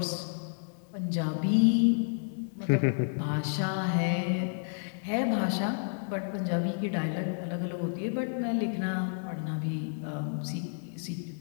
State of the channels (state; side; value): silent; right; digital silence